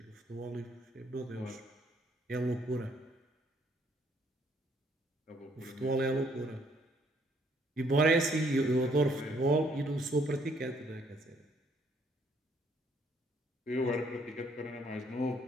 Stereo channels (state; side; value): normal; both; correlation 0.66